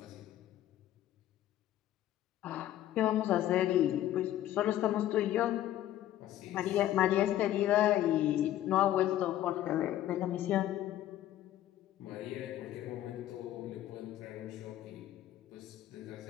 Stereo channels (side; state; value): right; quieter; 13.0 dB